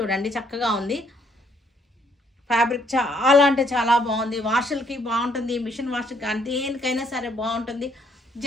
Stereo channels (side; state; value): both; normal; correlation 0.68